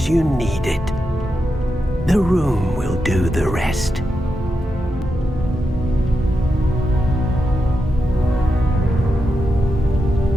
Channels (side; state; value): both; normal; correlation 0.87